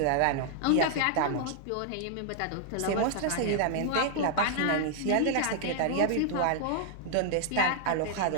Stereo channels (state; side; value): different; both; correlation 0.00